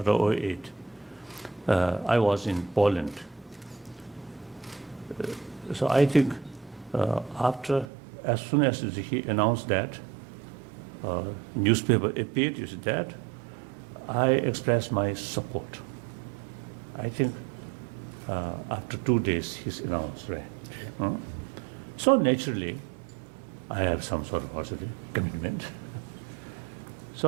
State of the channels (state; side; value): drops out; left; at 7.9 s